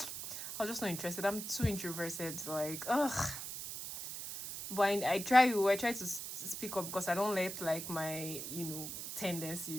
I was just not interested. I'm too introverted. Like, ugh. But I try to speak up because I don't let like my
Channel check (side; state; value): right; noise; hiss, 7 dB below the sound